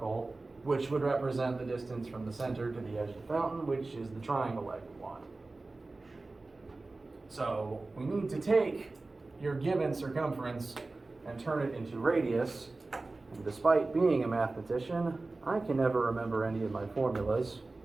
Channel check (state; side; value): quieter; left; 3.3 dB